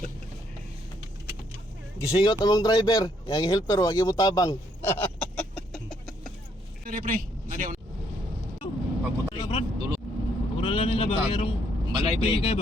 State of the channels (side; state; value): both; normal; correlation 0.71